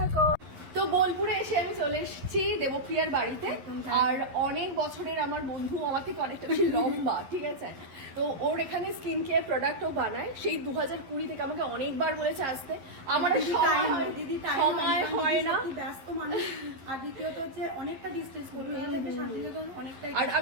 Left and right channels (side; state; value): left; late; 11 ms